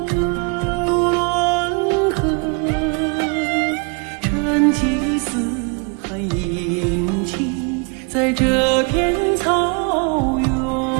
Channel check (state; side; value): quieter; left; 34.5 dB